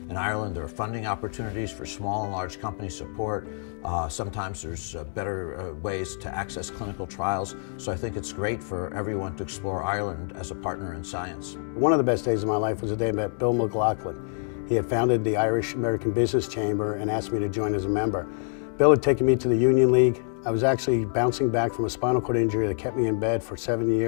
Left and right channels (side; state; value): right; silent; 58 dB below the other